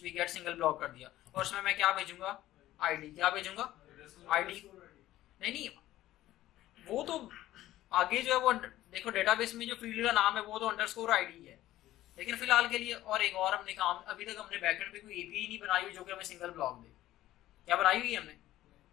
भी गेट सिंगल ब्लॉग कर दिया, और उसमें मैं क्या भेजूंगा, ID। क्या भेजूंगा, ID। नहीं, वो तो आगे जो है वो देखो, डेटाबेस में जो फील्ड का नाम है वो तो _ID है, लेकिन फिलहाल के लिए और एक और हमने काम, अभी तक हमने बैकएंड पे कोई API नहीं बनाई हुई जो कि हमें सिंगल ब्लॉग दे। क्या बनाई हुई है हमने,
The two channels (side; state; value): right; quieter; 14.7 dB